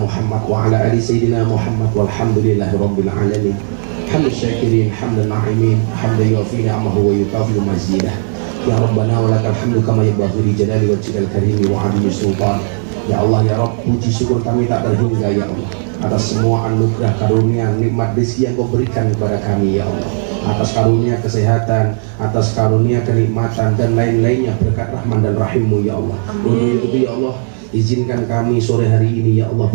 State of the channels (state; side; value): silent; left; digital silence